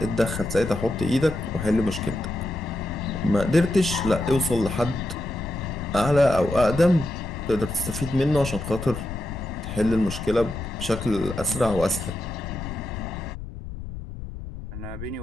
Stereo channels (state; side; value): noise; left; rumble, 9 dB below the sound